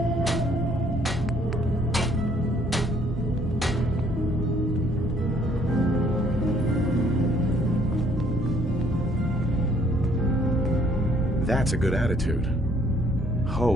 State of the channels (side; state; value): both; normal; correlation 0.63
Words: That's a good attitude.